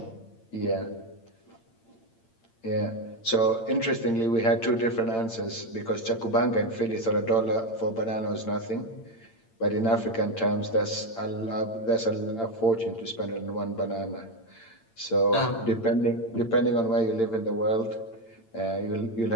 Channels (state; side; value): late; right; 8.8 ms